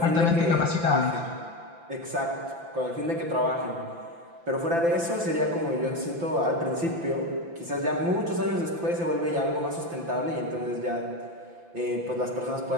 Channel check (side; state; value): left; late; 5.9 ms